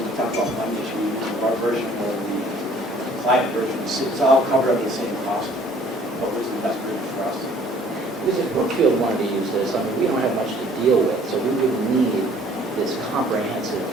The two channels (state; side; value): normal; both; correlation 0.56